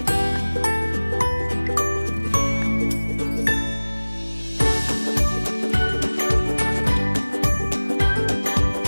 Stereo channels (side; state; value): both; inverted; correlation -1.00